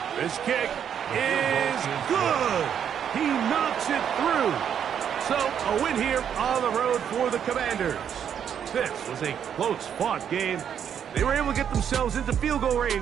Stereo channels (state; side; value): quieter; left; 8.6 dB